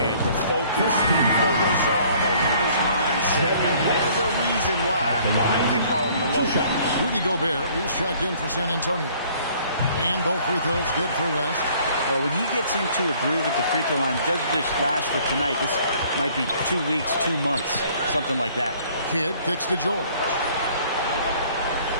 The focus, the resolve, a winner's mindset. There's a reason why they call him the logo. Rudy Gobert, he's checked in for San Antonio. And both free throws good for West. Well, when he gets into a groove at the free throw line, it doesn't just last for tonight. This might be 2 weeks, 2 months, something like that. Kidd kicks to George.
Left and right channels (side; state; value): both; inverted; correlation -0.58